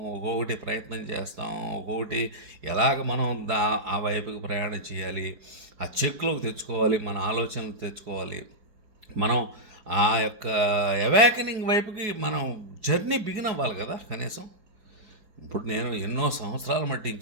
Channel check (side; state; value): left; late; 4.8 ms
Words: ఒక్కొక్కటి ప్రయత్నం చేస్తాం, ఒక్కొక్కటి ఎలాగ మనం ఆ వైపుకి ప్రయాణం చేయాలి, ఆ చెక్లోకి తెచ్చుకోవాలి, మన ఆలోచనలు తెచ్చుకోవాలి, మనం ఆ యొక్క అవేకనింగ్ వైపుకి మనం జర్నీ బిగిన్ అవ్వాలి కదా కనీసం. ఇప్పుడు నేను ఎన్నో సంవత్సరాల మట్టి